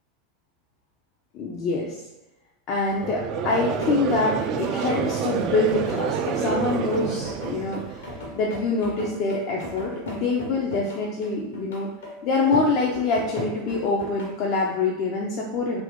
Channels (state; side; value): normal; both; correlation 0.10